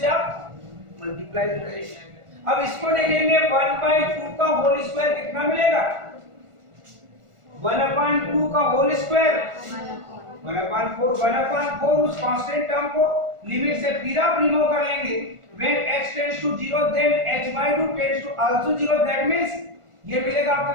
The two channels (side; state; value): left; late; 1.4 ms